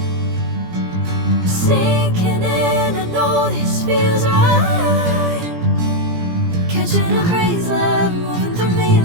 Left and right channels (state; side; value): late; left; 17 ms